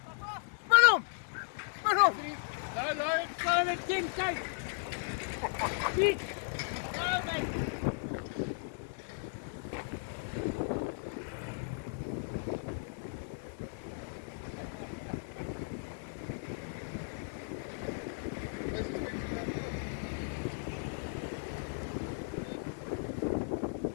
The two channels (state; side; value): silent; right; 54 dB below the other